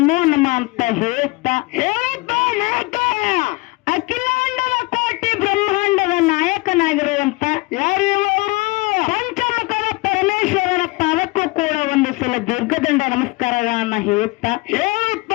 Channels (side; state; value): right; quieter; 23.4 dB